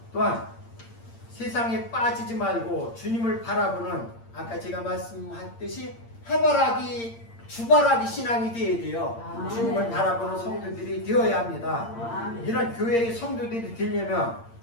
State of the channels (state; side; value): late; right; 8.7 ms